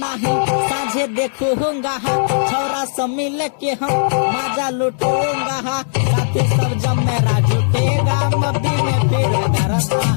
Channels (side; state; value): right; silent; 68 dB below the other